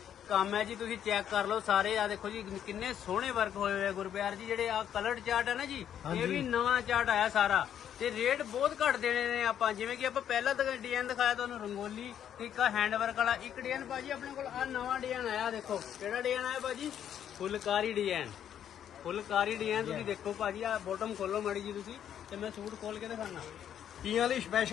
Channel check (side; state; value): right; quieter; 9.7 dB